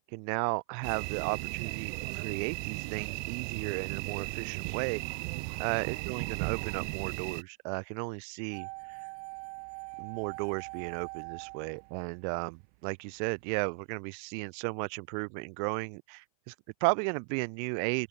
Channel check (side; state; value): left; silent; 54 dB below the other